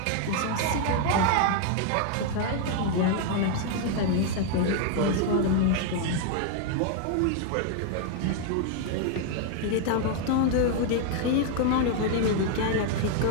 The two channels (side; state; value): both; different; correlation 0.00